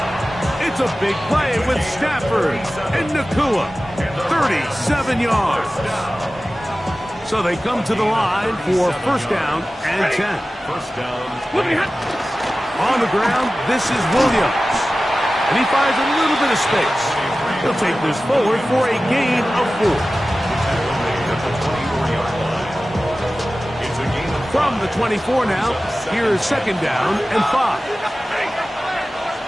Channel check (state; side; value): normal; both; correlation 0.96